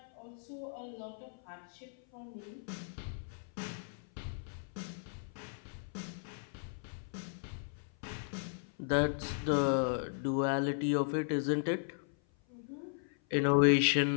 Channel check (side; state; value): right; silent; 54 dB below the other